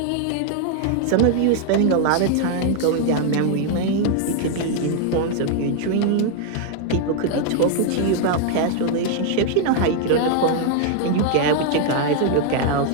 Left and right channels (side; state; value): both; different; correlation 0.00